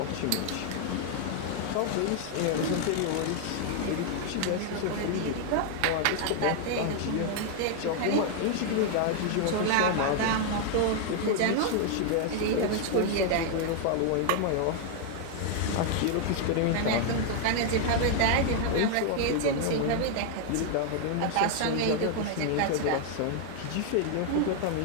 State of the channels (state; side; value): different; both; correlation 0.00